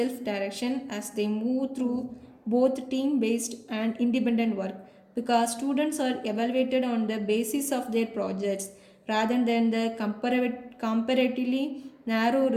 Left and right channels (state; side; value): identical; both; correlation 1.00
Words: as they move through both team-based and independent work because students are evaluated on the basis of their projects rather than the comparatively narrow